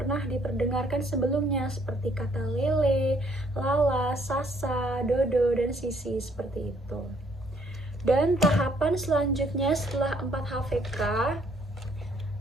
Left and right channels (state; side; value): normal; both; correlation 0.66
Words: diperdengarkan sebelumnya, seperti kata lele, lala, sasa, dodo, dan sisi, seperti itu. Dan tahapan selanjutnya setelah 4HVK,